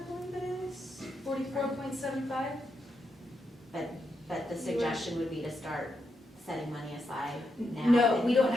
believe it is. 44.75? But the suggestion would be to start setting money aside now? No, we don't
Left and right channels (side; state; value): both; normal; correlation 0.83